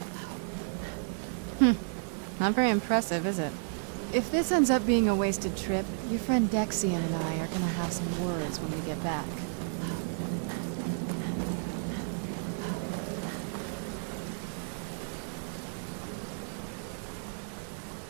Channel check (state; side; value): silent; left; digital silence